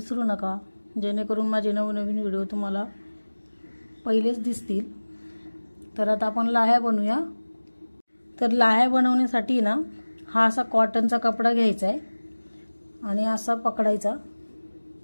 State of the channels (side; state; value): both; inverted; correlation -1.00